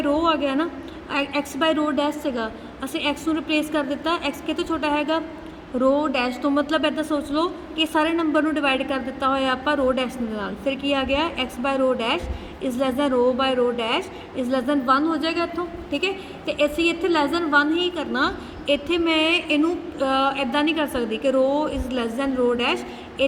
रो आ गया ना, एक्स बाय रो डैश सेगा, असी एक्स नूं रिप्लेस कर दिता, एक्स कितों छोटा हैगा रो डैश तो। मतलब इदा सोच लो कि सारे नंबर नूं डिवाइड कर दिता होया आपां रो डैश दे नाल, फिर की आ गया x by rho dash is less than rho by rho dash is less than 1 हो जाएगा इत्थों, ठीक है। तो असीं इत्थे लेस दैन 1 ही करना, इत्थे मैं इनू इदा नहीं कर सकती कि rho is less than rho dash,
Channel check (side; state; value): both; identical; correlation 1.00